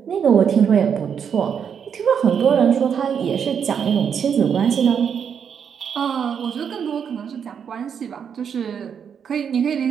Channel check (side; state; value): left; quieter; 7.5 dB